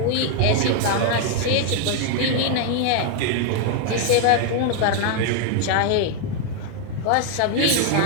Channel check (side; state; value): both; different; correlation 0.00